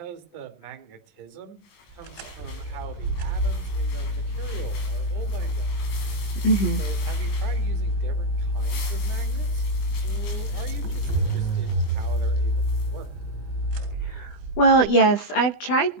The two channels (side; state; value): right; late; 20 ms